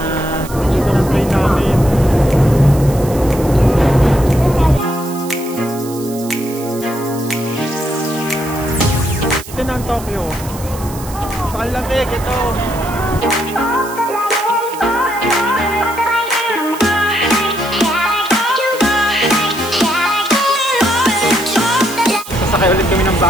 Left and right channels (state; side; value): noise; right; hiss, 15 dB below the sound